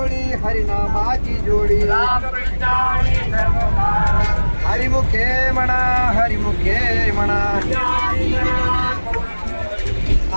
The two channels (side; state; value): both; inverted; correlation -1.00